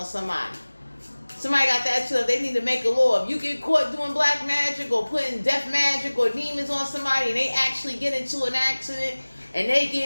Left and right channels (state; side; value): inverted; both; correlation -1.00